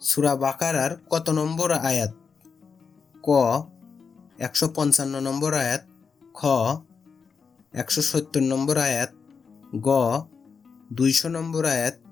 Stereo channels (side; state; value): right; quieter; 5.6 dB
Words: সূরা বাকারার কত নম্বর আয়াত? ক 155 নম্বর আয়াত, খ 170 নম্বর আয়াত, গ 200 নম্বর আয়াত,